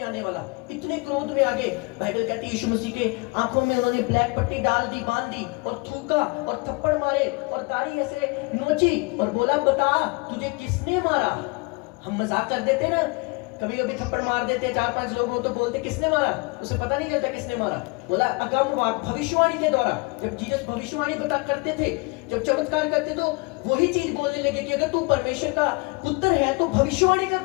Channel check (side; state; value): right; quieter; 28.0 dB